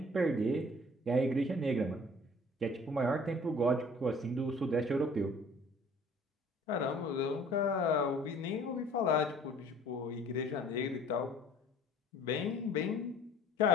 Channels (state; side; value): normal; both; correlation 0.52